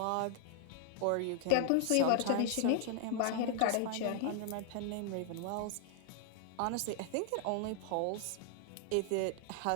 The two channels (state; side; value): different; both; correlation 0.00